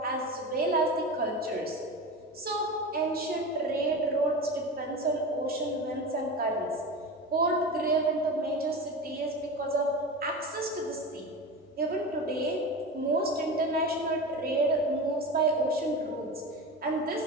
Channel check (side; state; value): both; normal; correlation 0.27